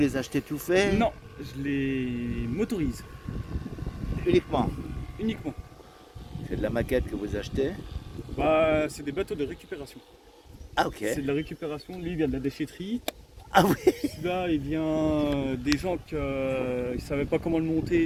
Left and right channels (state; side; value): identical; both; correlation 1.00